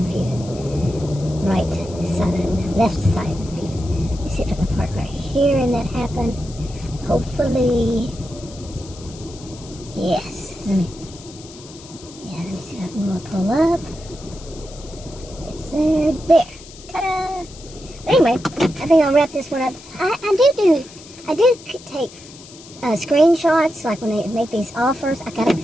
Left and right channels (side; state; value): left; noise; hiss, 19 dB below the sound